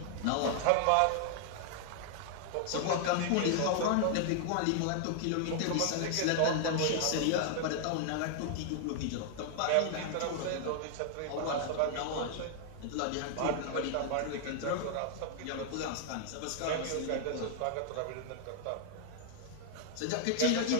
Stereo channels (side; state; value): both; different; correlation 0.00